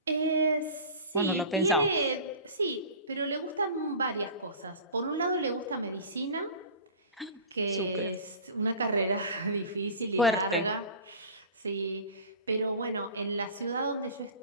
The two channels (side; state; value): both; inverted; correlation -0.36